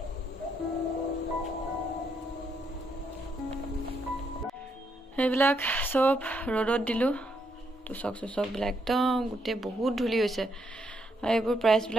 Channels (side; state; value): both; normal; correlation 0.76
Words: সেইবিলাক চব ৰ'দত দিলোঁ তোচক চোচকবিলাক একদম গোটেই বহুত ধূলি হৈছে আৰু এইবোৰ